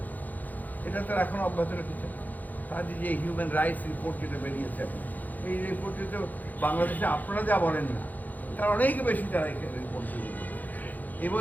এটা তারা এখন অব্যাহত রেখেছে। তাদের যে হিউম্যান রাইটস রিপোর্ট যেটা বেরিয়েছে, এই রিপোর্টে তো বাংলাদেশে আপনারা যা বলেন না, তার অনেক বেশি তারা এখানে রিপোর্ট বেরিয়েছে, এবং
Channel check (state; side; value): late; right; 0.083 ms